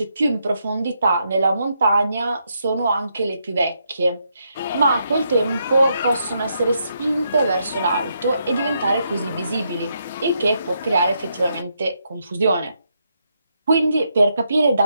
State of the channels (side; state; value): both; inverted; correlation -0.79